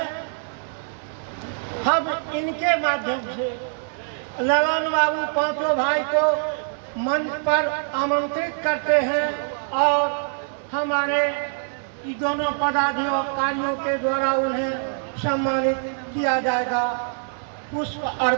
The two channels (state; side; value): silent; left; 60 dB below the other